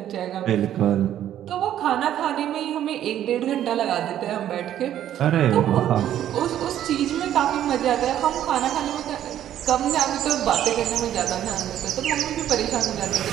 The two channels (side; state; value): left; quieter; 11.3 dB